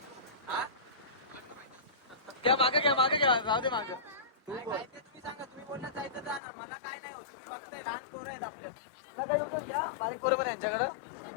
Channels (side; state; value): right; drops out; at 6.4 s